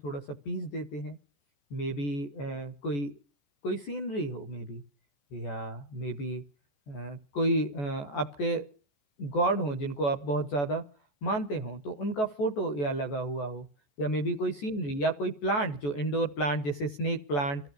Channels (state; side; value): late; right; 14 ms